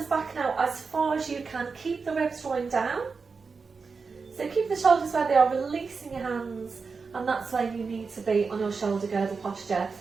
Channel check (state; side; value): quieter; left; 4.8 dB